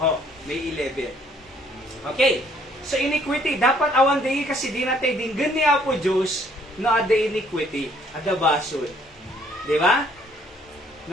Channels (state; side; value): normal; both; correlation 0.63